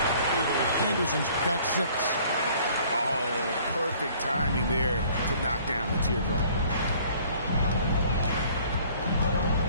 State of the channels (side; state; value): both; inverted; correlation -0.55